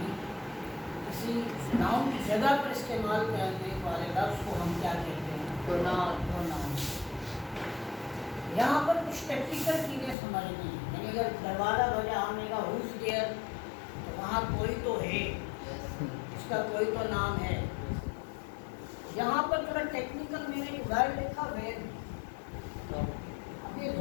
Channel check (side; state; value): right; drops out; at 10.2 s